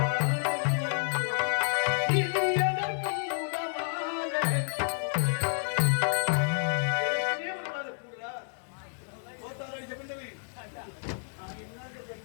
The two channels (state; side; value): silent; right; digital silence